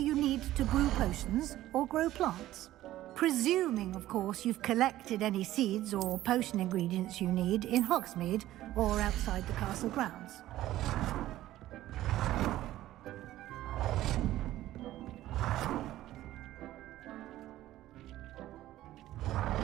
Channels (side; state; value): left; quieter; 14.6 dB